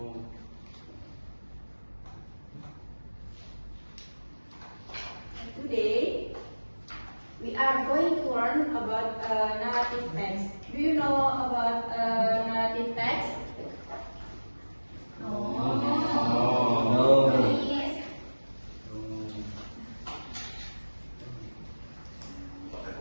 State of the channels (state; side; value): inverted; both; correlation -1.00